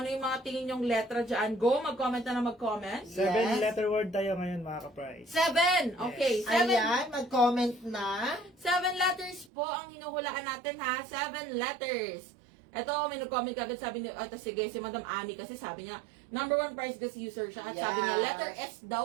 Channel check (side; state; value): left; drops out; at 9.5 s